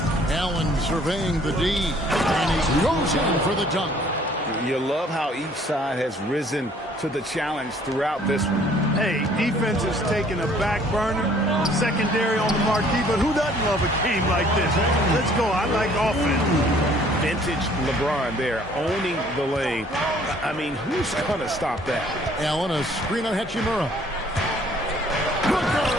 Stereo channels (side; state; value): both; normal; correlation 0.58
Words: Allen surveying the D, and he goes in for the dunk. You love how each side has risen to the challenge throughout this one. Hey, defense is taking a back burner, secondary on the marquee, but who doesn't love a game like this? Let's go. I like offense. Vintage LeBron there, owning the lane. I mean, who's going to stop that? Allen, a screen on Hachimura. Booker